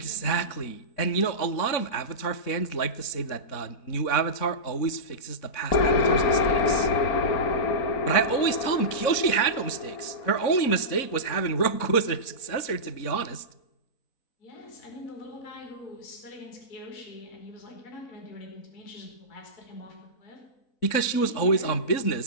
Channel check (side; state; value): right; late; 3.6 ms